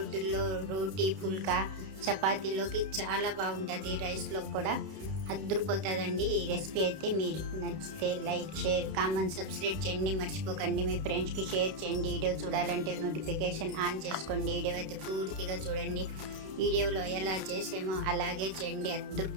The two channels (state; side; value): late; left; 32 ms